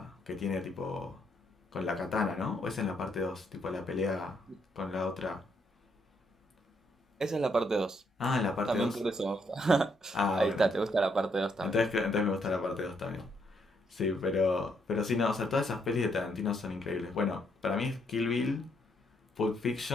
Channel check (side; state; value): both; normal; correlation 0.74